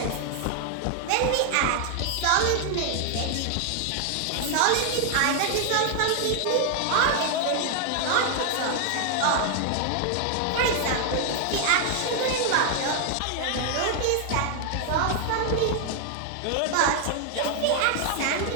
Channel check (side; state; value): both; different; correlation 0.00